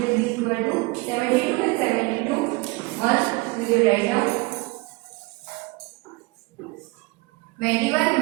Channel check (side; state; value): left; quieter; 24.6 dB